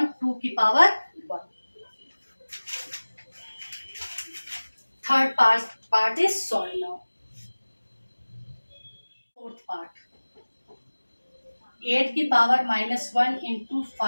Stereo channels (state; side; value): inverted; both; correlation -1.00